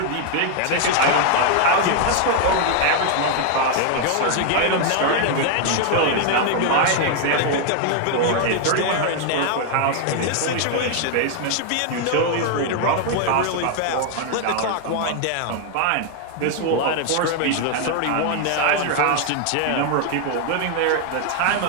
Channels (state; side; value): different; both; correlation 0.00